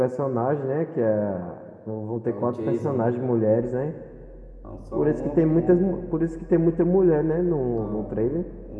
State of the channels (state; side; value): identical; both; correlation 1.00